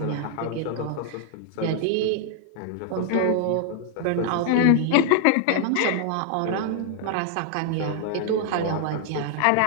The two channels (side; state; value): both; different; correlation 0.00